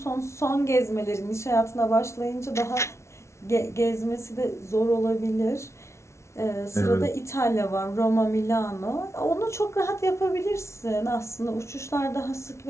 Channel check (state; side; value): late; right; 0.13 ms